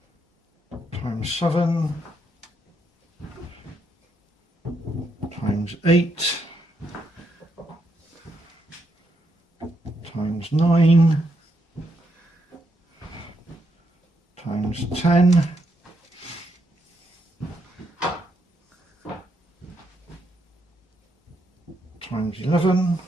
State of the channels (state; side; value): normal; both; correlation 0.78